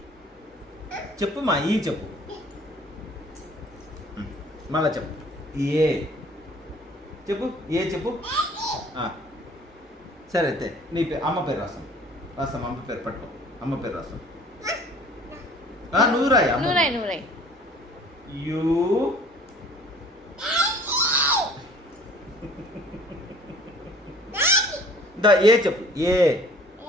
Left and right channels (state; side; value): normal; both; correlation 0.51